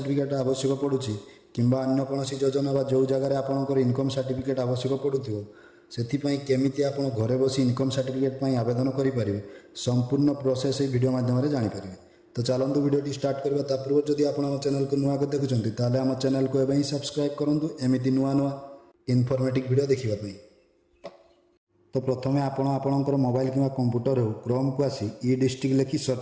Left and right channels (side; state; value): both; identical; correlation 1.00